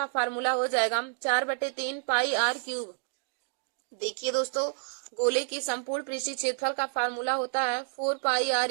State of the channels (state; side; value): silent; left; 58 dB below the other